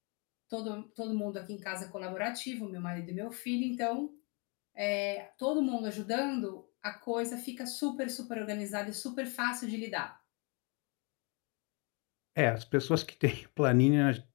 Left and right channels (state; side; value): quieter; right; 32.9 dB